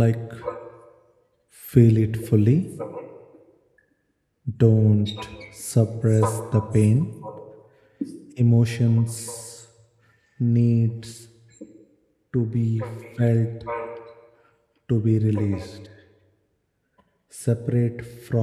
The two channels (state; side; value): identical; both; correlation 1.00